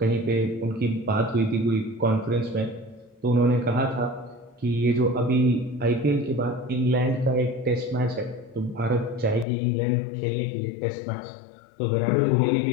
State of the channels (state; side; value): drops out; right; at 9.5 s